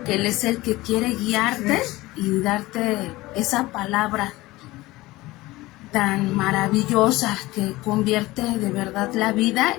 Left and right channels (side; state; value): right; quieter; 19.3 dB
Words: que Él es el que quiere guiarte y darte esa palabra tan maravillosa que convierte de verdad la vida